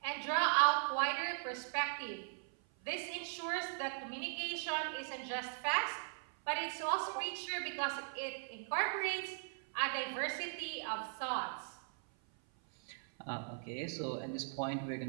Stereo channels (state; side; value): silent; left; 52 dB below the other